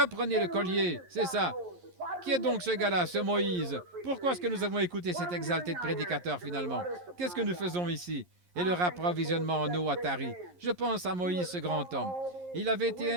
le collier, c'est ça. Qui est donc ce gars-là, ce Moïse? Pourquoi est-ce que nous avons écouté cet exalté de prédicateur finalement? Qu'est-ce que nous faisons ici? Et le approvisionnement en eau à Tari. Je pense à Moïse, ce grand homme. Il avait été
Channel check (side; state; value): left; late; 11 ms